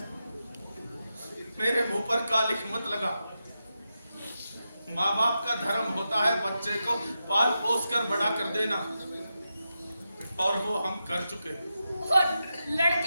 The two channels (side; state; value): both; inverted; correlation -0.89